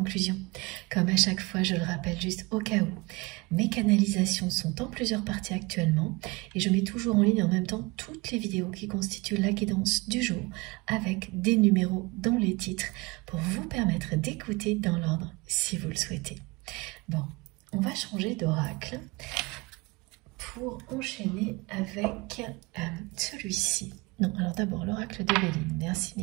Comme à chaque fois, je le rappelle juste au cas où, mes canalisations sont en plusieurs parties actuellement et je mets toujours en ligne en même temps toutes les vidéos qui constituent la guidance du jour avec des numéros dans les titres pour vous permettre d'écouter dans l'ordre si vous le souhaitez. Bon, on va changer d'oracle pour enchaîner avec celui-ci. Non, alors d'abord l'oracle de Béline. Merci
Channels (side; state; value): left; quieter; 25.0 dB